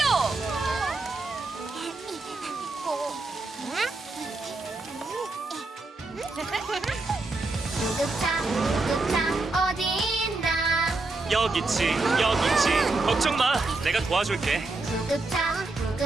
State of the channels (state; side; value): quieter; left; 3.3 dB